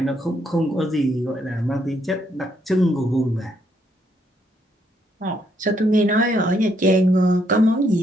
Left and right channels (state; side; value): normal; both; correlation 0.73